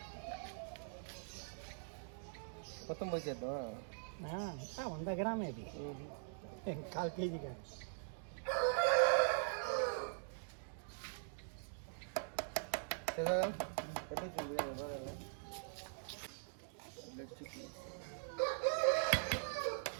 మొత్తం పోసేద్దాం. ఇంకా 100 గ్రామే ఇది, 1/4 కేజీ కానీ.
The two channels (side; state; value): left; silent; digital silence